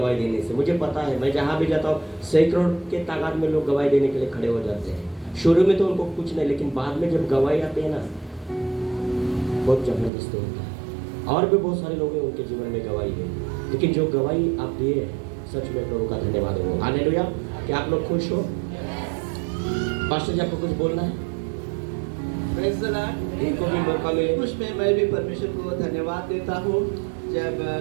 देने से। मुझे पता है, मैं जहाँ भी जाता हूँ सैकड़ों के तादाद में लोग गवाही देने के लिए खड़े हो जाते हैं। शुरू में तो उनको कुछ नहीं, लेकिन बाद में जब गवाही आते हैं ना, बहुत जबरदस्त होता है। और भी बहुत सारे लोग हैं उनके जीवन में गवाही है, लेकिन जो गवाही आप दिए सच में प्रभु का धन्यवाद हो। हालेलुया। क्या आप लोग खुश हो? पास्टर जी आपको कुछ बोलना है? Praise the Lord. इनको भी मौका मिले। उसमें मैं भी परमेश्वर को धन्यवाद देता हूँ। जब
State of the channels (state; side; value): drops out; left; at 10.1 s